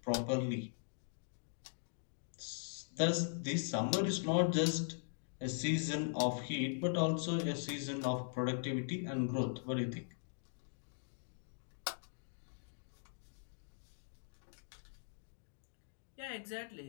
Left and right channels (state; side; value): silent; right; digital silence